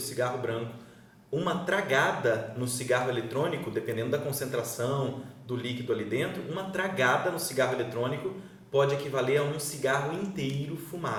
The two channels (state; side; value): identical; both; correlation 1.00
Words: branco. Uma tragada no cigarro eletrônico, dependendo da concentração do líquido ali dentro, uma tragada no cigarro eletrônico pode equivaler a um cigarro inteiro